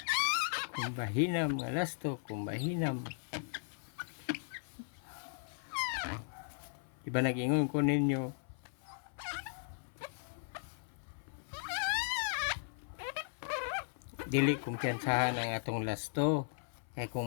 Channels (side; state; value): right; silent; 53 dB below the other